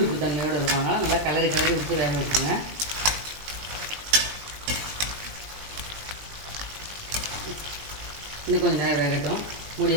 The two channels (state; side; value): late; left; 20 ms